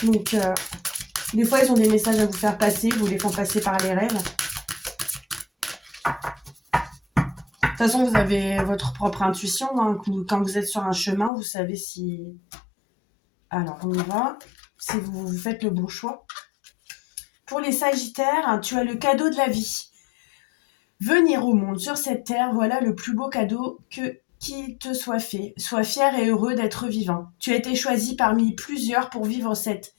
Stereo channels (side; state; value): right; drops out; at 11.3 s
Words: Donc, des fois, ils ont des messages à vous faire passer. Vous les font passer par les rêves. De toute façon, vous avez votre propre intuition. Hein. Quand vous êtes sur un chemin, vous savez si... Alors, on y va. Si vous faites le bon choix. Pour les Sagittaires, tu as le cadeau de la vie. Venir au monde sur cette terre, voilà le plus beau cadeau qui te soit fait. Sois fier et heureux d'être vivant. Tu as été choisi parmi plusieurs pour vivre cette